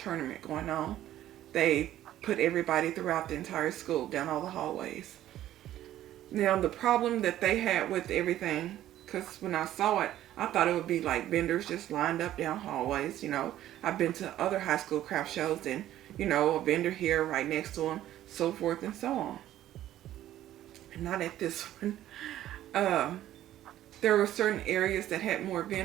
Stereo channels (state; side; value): quieter; left; 13.0 dB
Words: going on, they put everybody throughout the entire school down all the hallways. Now the problem that they had with everything, because when I saw it, I thought it would be like vendors just lined up down hallways. I've been to other high school craft shows, and a vendor here right next to them, so forth and so on. Not at this one. There were certain areas that had more